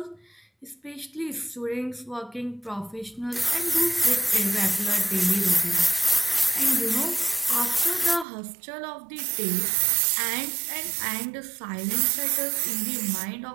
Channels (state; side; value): drops out; left; at 8.2 s